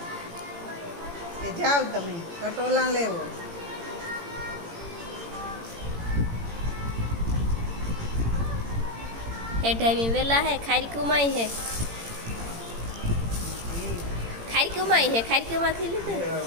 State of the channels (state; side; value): late; left; 18 ms